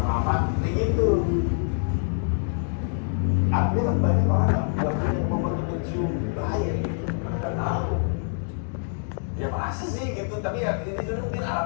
lama kayak gitu. Artinya kan banyak orang yang punya momen mencium bahaya gitu, mereka tahu. Ya masa sih gitu, tapi ya ini juga mungkin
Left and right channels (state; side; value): silent; right; 61 dB below the other